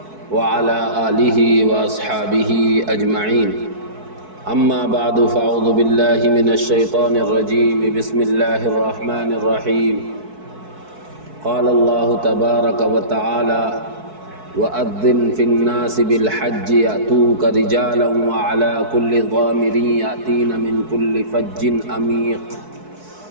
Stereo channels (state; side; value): late; left; 4.6 ms